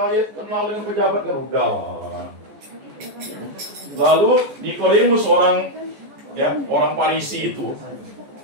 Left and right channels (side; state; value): left; late; 14 ms